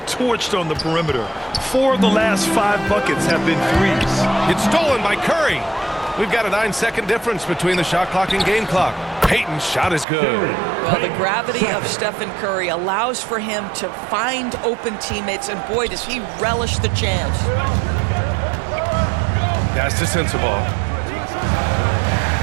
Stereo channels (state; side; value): drops out; left; at 10.1 s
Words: torched on the perimeter. 4 of the last 5 buckets have been threes. It's stolen by Curry. We've got a 9-second difference between the shot clock and game clock. Payton's shot is good. Well, the gravity of Stephen Curry allows for him to find open teammates, and boy, does he relish the chance. Pass to Sensabaugh.